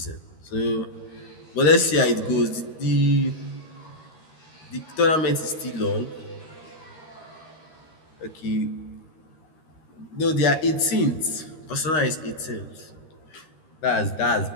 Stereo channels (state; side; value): late; right; 13 ms